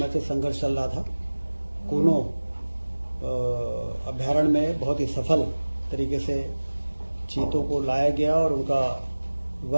से संघर्ष चल रहा था, कूनो अभ्यारण्य में बहुत ही सफल तरीके से चीतों को लाया गया और उनका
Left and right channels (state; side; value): inverted; both; correlation -1.00